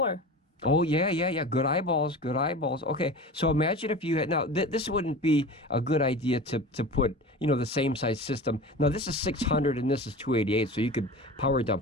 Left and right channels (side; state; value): both; normal; correlation 0.33